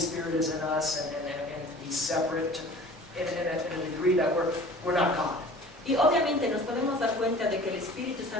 is in us and be separate in a degree that we're not God. Y obviamente nos podemos dar cuenta de que el Espíritu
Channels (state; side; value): normal; both; correlation 0.44